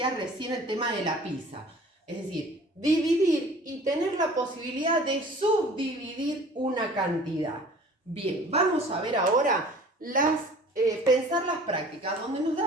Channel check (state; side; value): normal; both; correlation 0.47